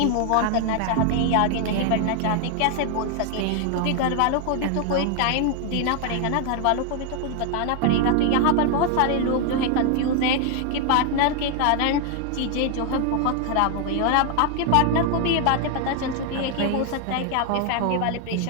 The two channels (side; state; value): both; different; correlation 0.00